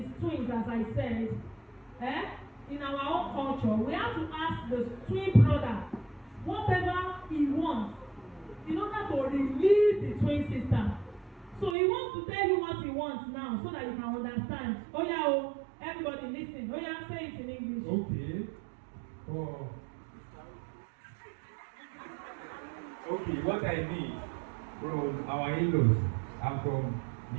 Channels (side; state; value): left; drops out; at 11.8 s